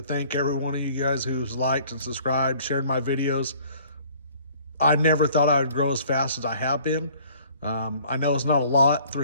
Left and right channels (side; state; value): both; inverted; correlation -0.55